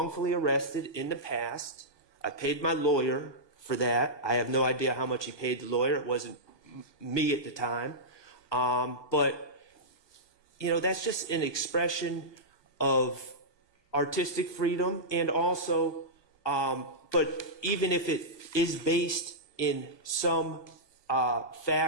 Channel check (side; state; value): right; late; 1.2 ms